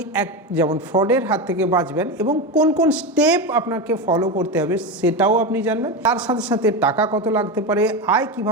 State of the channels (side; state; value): both; normal; correlation 0.17